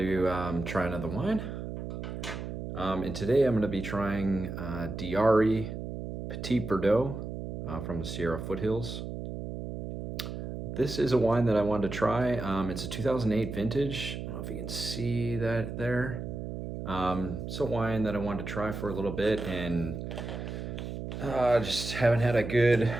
try another wine. And today I'm going to be trying Arie Petit Verdot from the Sierra Foothills. This is a wine that I wanted to try. It's a 2008 vintage. I don't know if you can see that there. It's a wine that I wanted to try for a little bit and just haven't had a good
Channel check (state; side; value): noise; right; hum, 7 dB below the sound